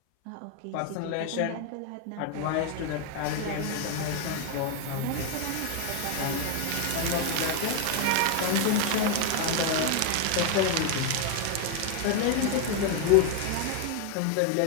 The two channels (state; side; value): different; both; correlation 0.01